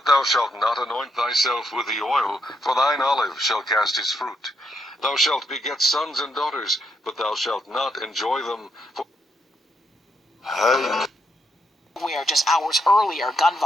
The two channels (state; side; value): normal; both; correlation 0.78